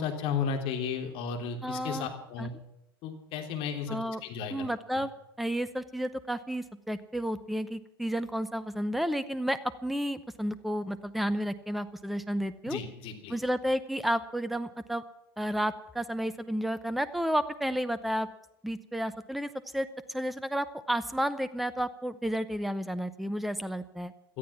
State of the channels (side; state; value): both; normal; correlation 0.83